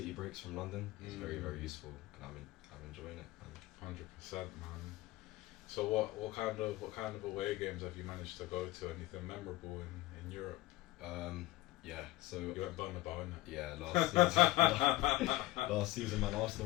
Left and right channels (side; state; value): right; quieter; 18.3 dB